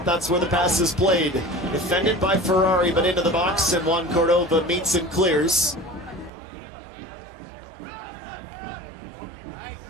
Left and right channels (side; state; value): left; drops out; at 6.3 s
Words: That's where the pass is played. Defended by Ferrari, but into the box, and Juan Cordova meets and clears.